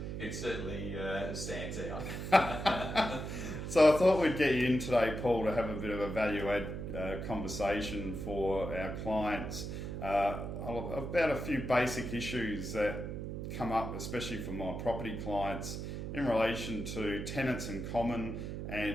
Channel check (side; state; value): right; noise; hum, 5 dB below the sound